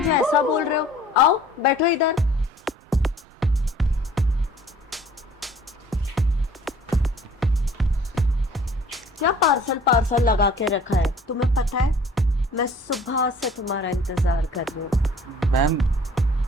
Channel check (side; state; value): both; normal; correlation 0.53